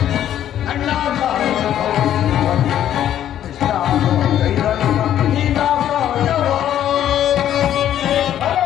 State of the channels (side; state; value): right; quieter; 11.1 dB